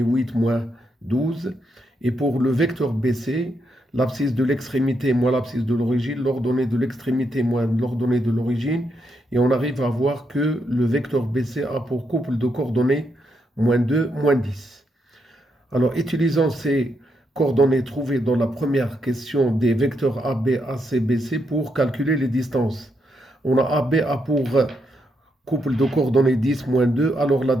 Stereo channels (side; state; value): both; normal; correlation 0.80